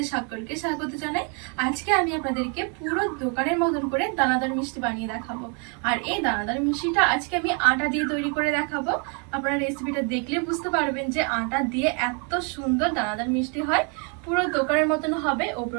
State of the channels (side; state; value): left; quieter; 37.2 dB